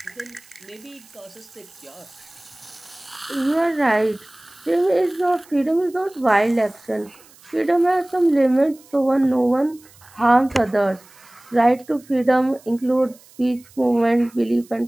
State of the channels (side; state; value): right; noise; hiss, 26 dB below the sound